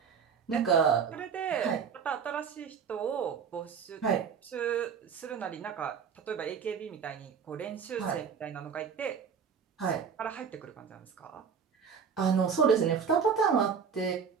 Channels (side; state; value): left; quieter; 6.6 dB